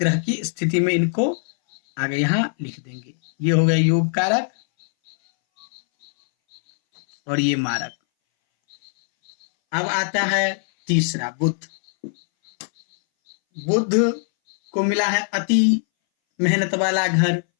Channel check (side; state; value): right; silent; 62 dB below the other